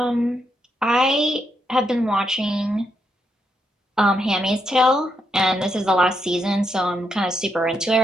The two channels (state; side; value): normal; both; correlation 0.80